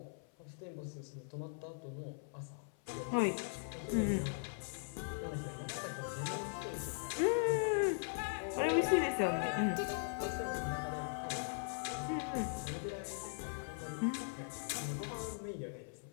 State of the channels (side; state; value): right; silent; 51 dB below the other